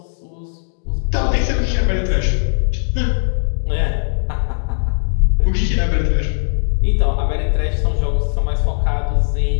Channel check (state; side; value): silent; right; digital silence